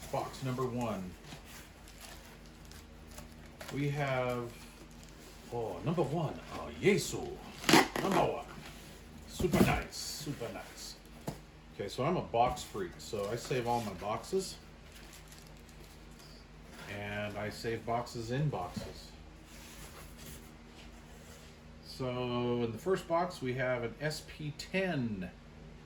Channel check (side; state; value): both; identical; correlation 1.00